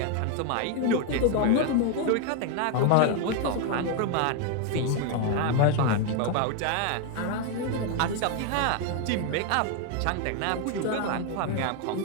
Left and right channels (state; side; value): different; both; correlation 0.01